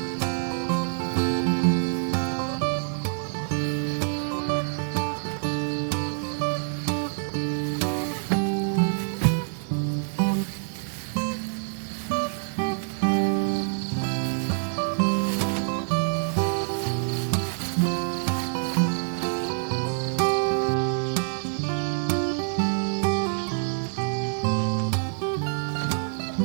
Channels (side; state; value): left; silent; 61 dB below the other